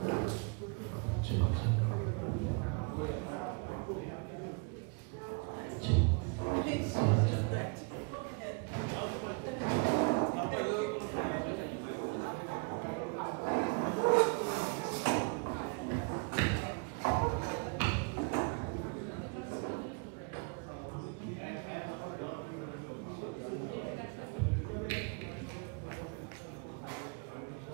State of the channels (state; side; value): quieter; left; 33.3 dB